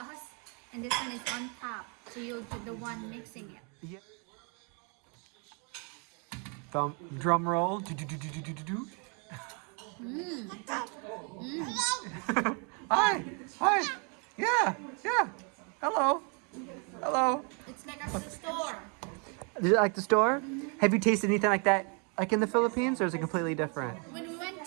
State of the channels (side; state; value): left; quieter; 36.6 dB